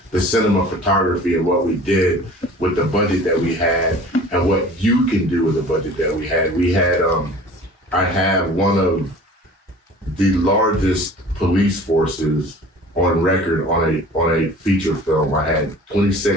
the cinema photography and what we did with the budget that we had and what you can do with the budget that we had. I have one of the largest police forces on record on a feature film. I had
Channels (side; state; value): both; normal; correlation 0.44